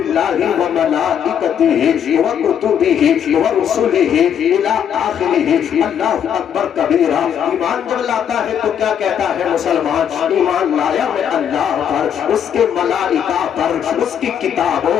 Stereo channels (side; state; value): right; quieter; 8.7 dB